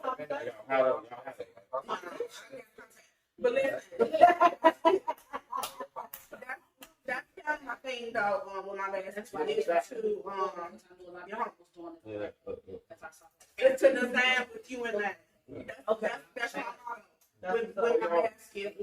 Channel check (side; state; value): both; identical; correlation 1.00